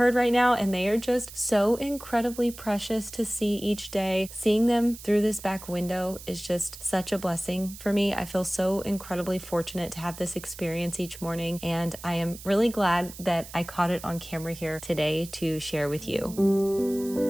right now, and they are just so incredibly precious to see each day. Seeing them through this back window is just such a blessing for me. I feel so incredibly fortunate to have this experience each morning, and I am really glad that I caught it on camera here today to share with you.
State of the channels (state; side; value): noise; right; hiss, 15 dB below the sound